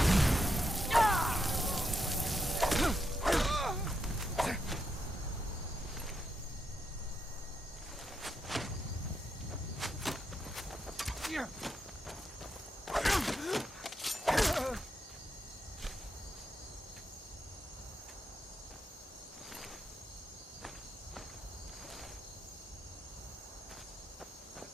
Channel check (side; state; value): both; normal; correlation 0.82